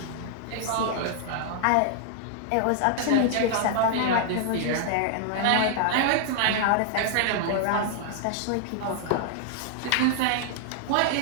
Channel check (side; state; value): both; different; correlation 0.00